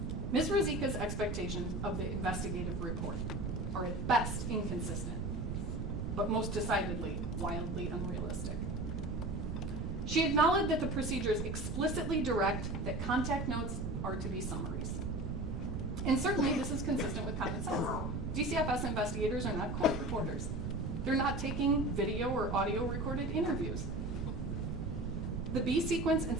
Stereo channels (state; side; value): noise; right; rumble, 2 dB below the sound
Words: Ms. Ruzicka's expectations of the investigative report are at best inconsistent, but most decidedly wildly unrealistic. She acknowledged that the procedures explicitly direct that contact notes are to be summaries. And certainly this is consistent with common sense. DCFS investigators are not court reporters. They're not taking video or audio recorded interviews. The B sequence and